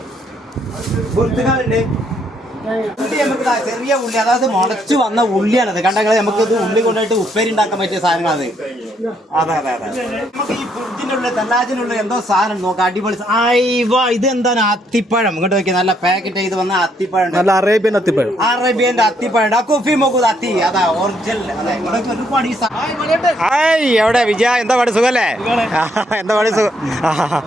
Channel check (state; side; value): normal; both; correlation 0.72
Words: ബുർത്തുകളുണ്ട്. ഉള്ളി നമുക്ക് ചെറിയ ഉള്ളി, അതായത് മുളച്ചു വന്ന ഉള്ളിയാണത്. കണ്ടെങ്കിൽ നമുക്കത് ഉള്ളി കൊണ്ടുപോയിട്ട് ഉപ്പേരി ഉണ്ടാക്കാൻ പറ്റിയ സാധനങ്ങളത്. അതെ അതെ അതെ. നമുക്ക് ഈ ഫ്രിഡ്ജിന്റെ ഉള്ളിൽ തെല്ലാജിനുള്ളിൽ എന്തോ സാധനം നോക്കാം. അടിപൊളി. ഇത് എന്താണ്? അത്തിപ്പഴം. ഇങ്ങോട്ട് നോക്കിയാൽ നല്ല പാക്കറ്റ് ചെയ്ത് വന്ന അത്തിപ്പഴം. നല്ല അറേബ്യൻ അത്തിപ്പഴം. അറേബ്യന്റെ അത്തിപ്പഴം. കോഫി മോക്കു അത്തി. അതാ ഒറിജിനൽ. അതെ, ഒരുപാട് ഈ എവിടെ വിജയ? എന്താ പാട്? സുഖല്ലേ? എന്താ പാട്? സുഖം.